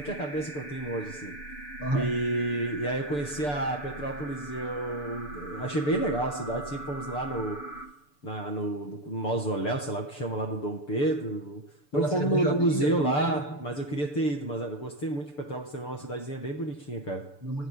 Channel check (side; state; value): right; late; 6.8 ms